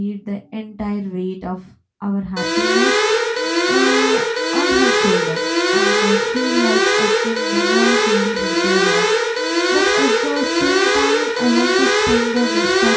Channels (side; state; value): both; identical; correlation 1.00